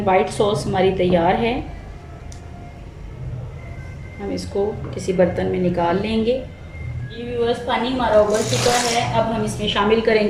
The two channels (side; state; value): both; identical; correlation 1.00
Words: वाइट सॉस हमारी तैयार है। हम इसको किसी बर्तन में निकाल लेंगे। ये व्यूअर्स, पानी हमारा उबल चुका है। अब हम इसमें शामिल